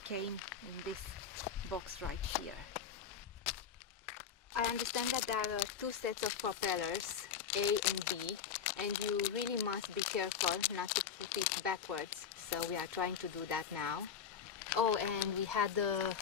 came in this box right here. I understand that there are 2 sets of propellers, A and B, and you really must be careful not to put it backwards, so we are trying to do that now. Oh, and we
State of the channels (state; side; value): quieter; right; 7.3 dB